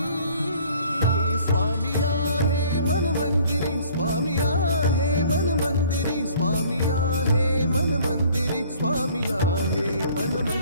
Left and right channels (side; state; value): both; inverted; correlation -0.54